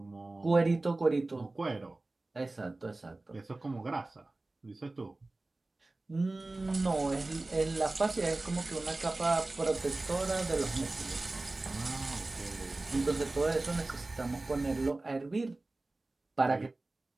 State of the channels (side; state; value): left; quieter; 3.0 dB